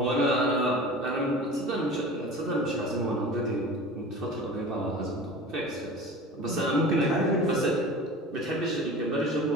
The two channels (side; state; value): both; normal; correlation 0.37